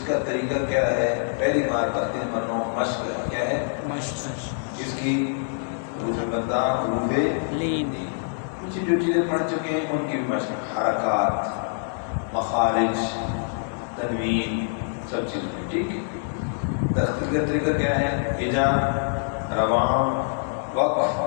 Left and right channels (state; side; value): silent; right; digital silence